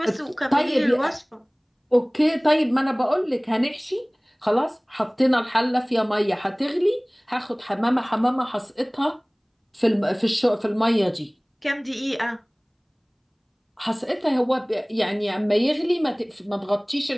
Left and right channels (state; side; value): identical; both; correlation 1.00